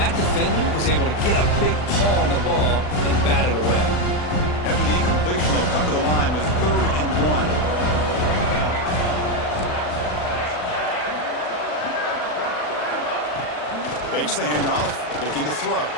defender was able to get a big paw on the ball and bat it away. After the incompletion, they'll come to the line with 3rd and 1. Fakes the handoff, looking to throw.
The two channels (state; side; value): late; right; 40 ms